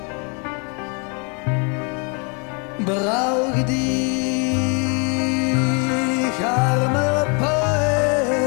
brauche dich, armer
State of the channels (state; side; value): quieter; right; 34.9 dB